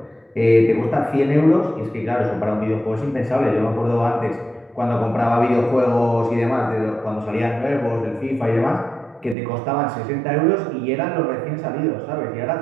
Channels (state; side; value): drops out; left; at 9.3 s